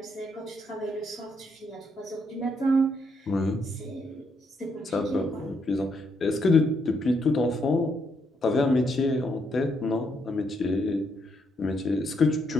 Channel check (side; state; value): both; normal; correlation 0.76